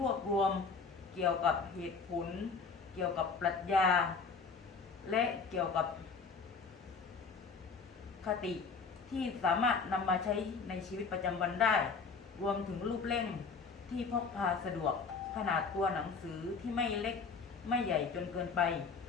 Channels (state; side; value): quieter; right; 5.0 dB